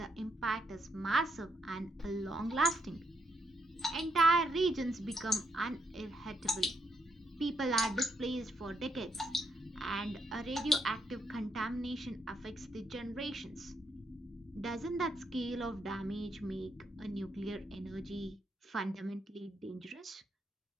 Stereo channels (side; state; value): both; normal; correlation 0.78